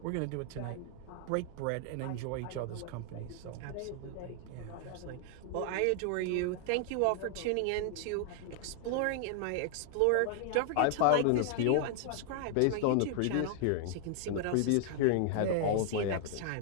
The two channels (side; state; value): both; different; correlation 0.00